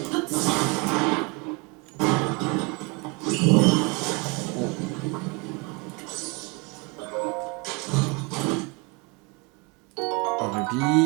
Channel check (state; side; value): quieter; left; 28.3 dB